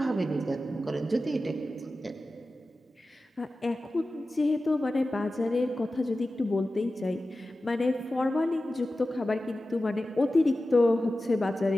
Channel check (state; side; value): normal; both; correlation 0.94